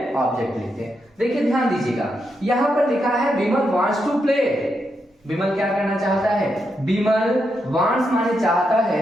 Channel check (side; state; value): both; normal; correlation 0.83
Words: ऑब्जेक्ट लिखते हैं। देखिए ध्यान दीजिएगा, यहां पर लिखा है विमल वांट्स टू प्ले। विमल क्या करना चाहता है, विमल वांट्स माने चाहता